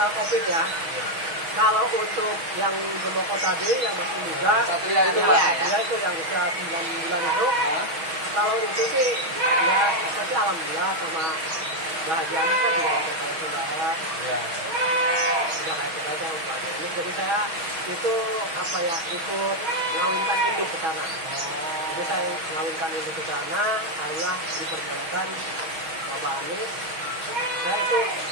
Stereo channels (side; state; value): left; late; 6.2 ms